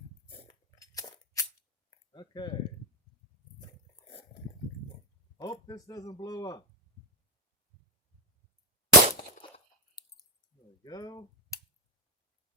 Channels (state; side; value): normal; both; correlation 0.09